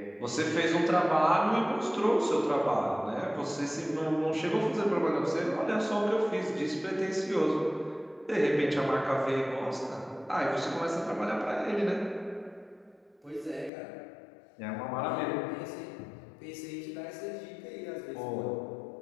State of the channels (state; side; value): drops out; right; at 13.7 s